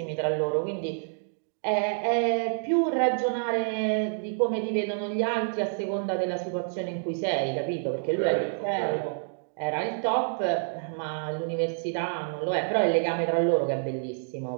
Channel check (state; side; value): silent; left; digital silence